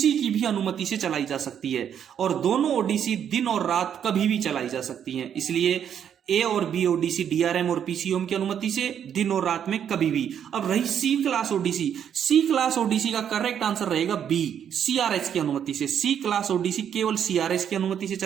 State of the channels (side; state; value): left; quieter; 8.8 dB